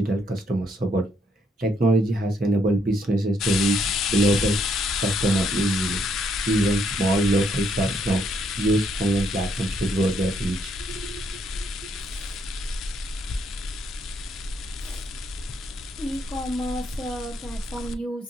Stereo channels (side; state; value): both; normal; correlation 0.72